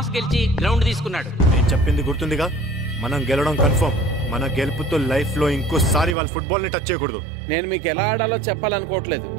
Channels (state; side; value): drops out; left; at 6.2 s